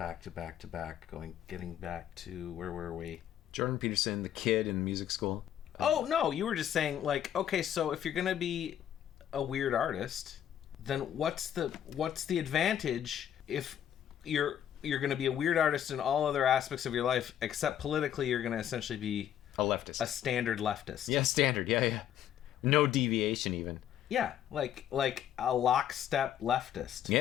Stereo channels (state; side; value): quieter; right; 10.4 dB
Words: getting back to where were we? Jordan Peterson, the kid in music school. Oh no, you were just saying, like, okay, so if you're gonna be a weird artist, then what's the advantage if you're gonna be a weird artist in all other aspects of your life, except politically you're gonna essentially be A leftist. a standard leftist? Yeah, standard. Yeah. No deviation even. Yeah, like a lockstep leftist.